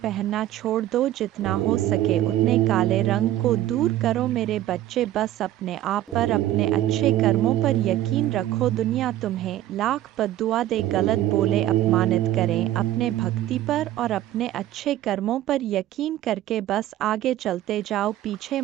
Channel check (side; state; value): left; quieter; 13.6 dB